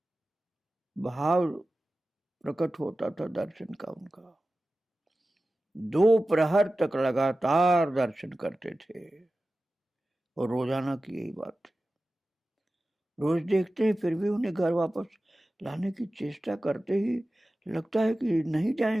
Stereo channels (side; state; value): both; normal; correlation 0.95